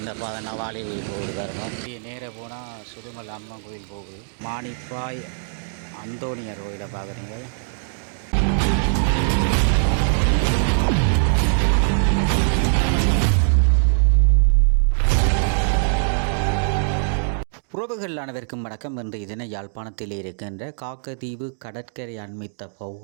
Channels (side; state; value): left; silent; digital silence